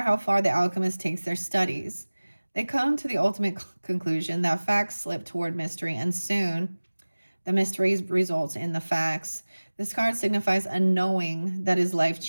how far the alchemist takes their studies. They come to the ultimate conclusion that facts slip toward mystery, and soon the mystery results in the facts. This card signifies a knowing that is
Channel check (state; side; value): inverted; both; correlation -1.00